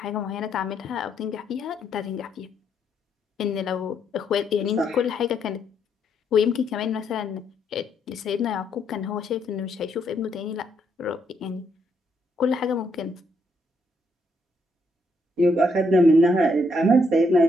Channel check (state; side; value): normal; both; correlation 0.75